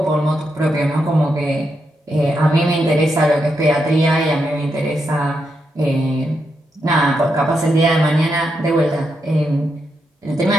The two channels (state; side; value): normal; both; correlation 0.83